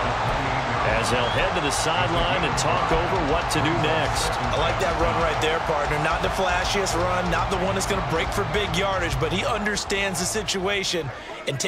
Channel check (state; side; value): identical; both; correlation 1.00